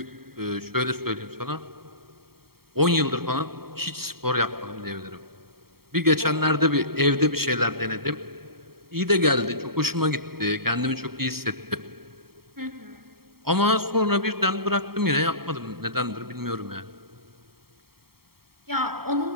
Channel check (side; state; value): left; late; 0.95 ms